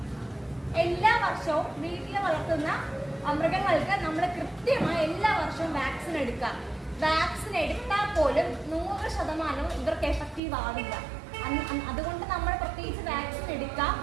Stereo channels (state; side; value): drops out; left; at 10.4 s